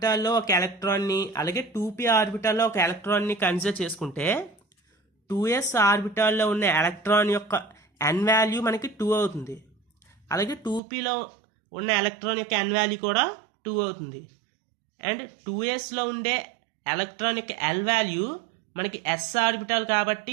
ఒక ఎలక్ట్రాన్ని అలాగే 2p ఆర్బిటాల్లో ఒక ఎలక్ట్రాన్ని కన్సిడర్ చేసుకుంటే 2s ఆర్బిటాల్లో ఉన్న ఎలక్ట్రాన్ యొక్క n వాల్యూ మనకి 2 అవుతుంది. అలాగే 2pలో ఉన్న ఎలక్ట్రాన్ యొక్క n వాల్యూ కూడా 2 అవుతుంది. అండ్ 2sలో ఉండే ఎలక్ట్రాన్ యొక్క l వాల్యూ మనకి s ఆర్బిటాల్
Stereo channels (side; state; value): left; drops out; at 10.8 s